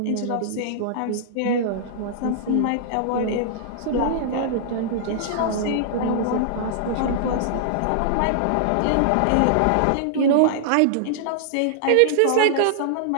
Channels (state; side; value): different; both; correlation -0.01